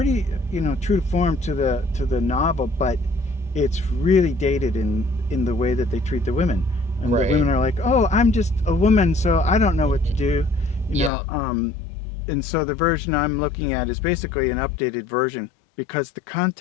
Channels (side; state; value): right; drops out; at 11.1 s